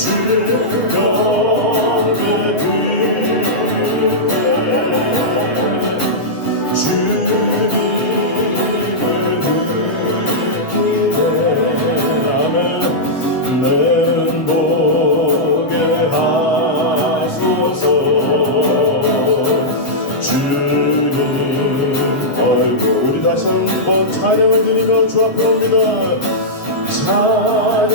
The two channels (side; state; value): right; late; 7.4 ms